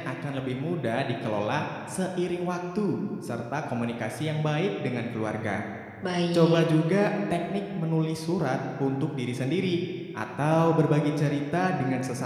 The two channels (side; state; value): both; identical; correlation 1.00